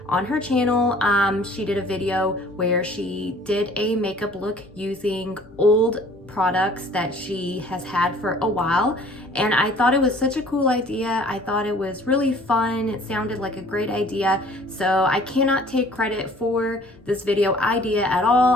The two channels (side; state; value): both; normal; correlation 0.53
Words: on her channel. She did a video where she did a makeup look using old products that she has had for a while, and I thought it was such a cool idea. I thought it was really fun. It sounded like a great idea, so I cannot take credit for this video idea at all.